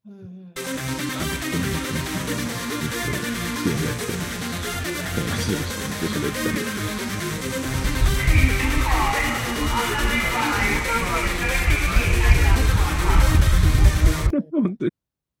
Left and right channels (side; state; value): both; identical; correlation 1.00